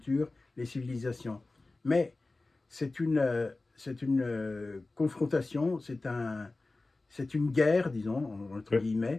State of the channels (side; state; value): right; quieter; 3.2 dB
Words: les civilisations. Mais c'est confrontation, c'est une guerre, disons, entre